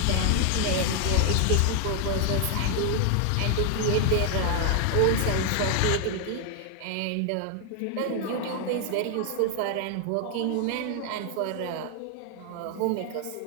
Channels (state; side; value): different; both; correlation 0.00